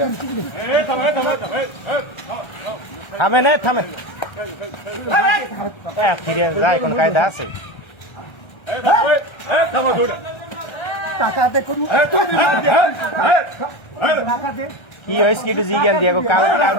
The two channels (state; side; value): late; right; 1.3 ms